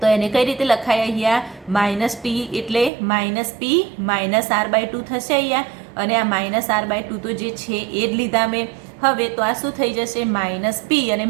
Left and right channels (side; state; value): left; drops out; at 2.9 s